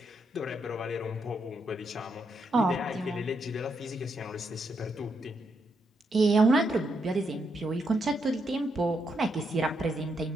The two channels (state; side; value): normal; both; correlation 0.79